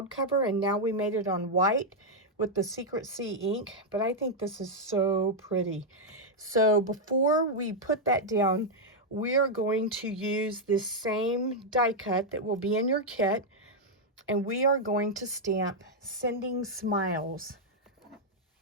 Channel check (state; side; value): normal; both; correlation -0.02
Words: cover, and now we made it on white with the Secret C ink, but I think this is so pretty. So before we put that down, we're going to use this same die cut that will be in your kit, and we are going to stamp Sending Smiles.